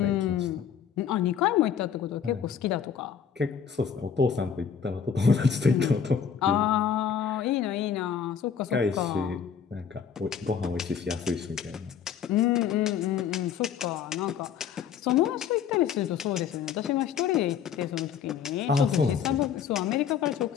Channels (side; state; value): right; quieter; 7.6 dB